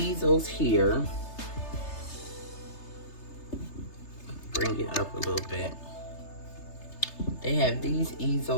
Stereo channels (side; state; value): right; late; 3.3 ms